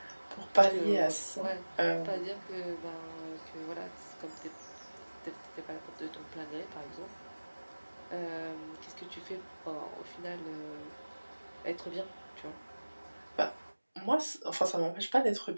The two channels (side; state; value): both; inverted; correlation -1.00